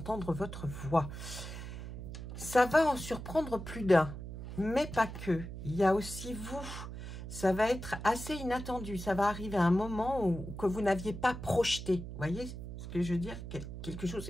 votre voix. Ça va en surprendre plus d'un, mais pas que. Il y a aussi vous. Ça va être assez inattendu. Ça va arriver à un moment que vous n'aviez pas projeté. Vous voyez ce que je veux dire? Quelque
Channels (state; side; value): noise; right; hum, 9 dB below the sound